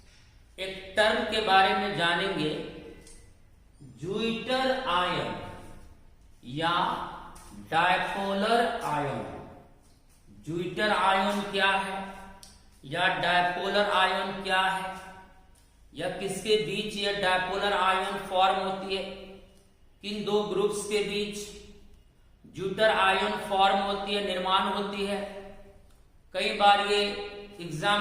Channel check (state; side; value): identical; both; correlation 1.00